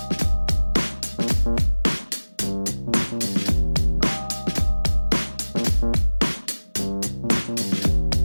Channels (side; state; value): both; inverted; correlation -1.00